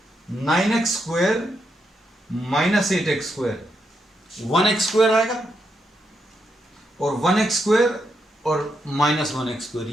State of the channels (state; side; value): normal; both; correlation 0.82